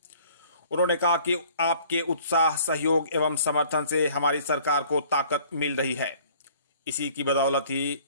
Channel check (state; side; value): inverted; both; correlation -0.54